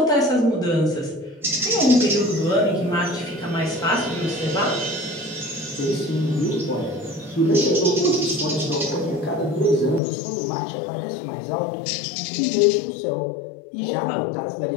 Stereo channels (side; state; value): right; drops out; at 10.0 s